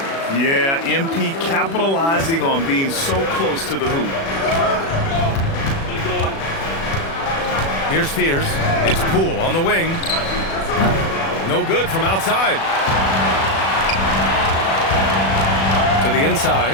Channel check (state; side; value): late; right; 36 ms